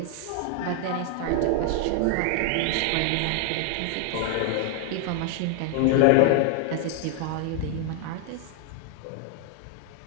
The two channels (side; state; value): both; different; correlation 0.00